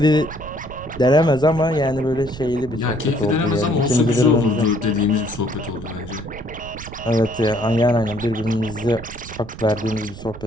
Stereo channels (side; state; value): right; noise; rumble, 14 dB below the sound